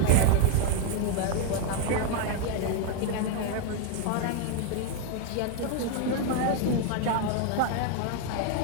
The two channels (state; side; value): different; both; correlation 0.01